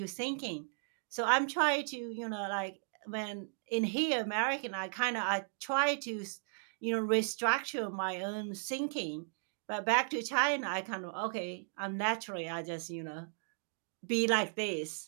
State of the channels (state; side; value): silent; left; digital silence